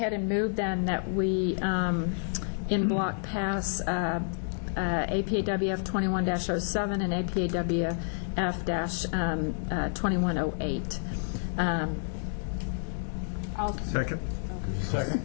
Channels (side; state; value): right; silent; digital silence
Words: and move then that we, in block, pass APAWF 21-07 and APAWF-2108. Second. Second.